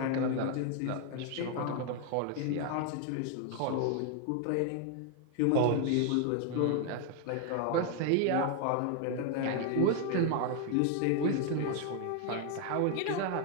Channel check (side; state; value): both; different; correlation 0.01